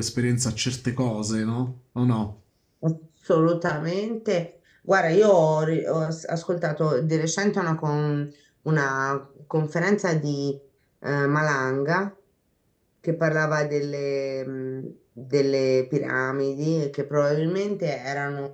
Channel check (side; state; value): both; identical; correlation 1.00